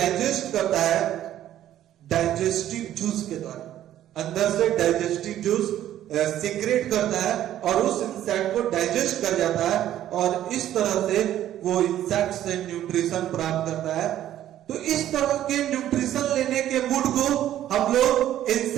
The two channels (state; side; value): quieter; left; 12.2 dB